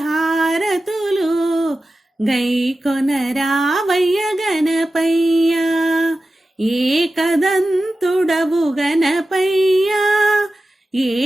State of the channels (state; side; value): normal; both; correlation 0.94